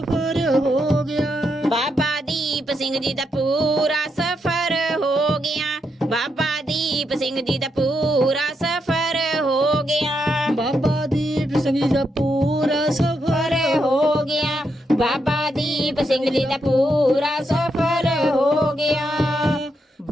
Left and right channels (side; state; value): both; normal; correlation 0.82